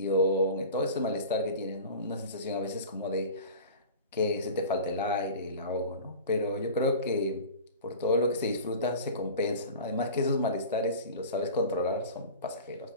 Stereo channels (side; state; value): both; inverted; correlation -0.37